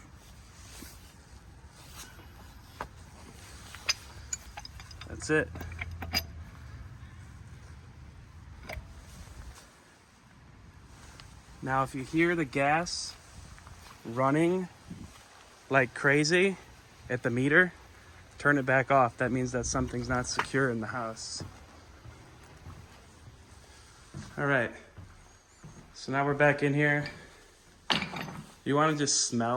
That's it. Now, if you hear the gas running like crazy at the meter, turn it back off. That means that something's not secure in the house. All right. So now we're back in here. You want to just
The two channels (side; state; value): both; identical; correlation 1.00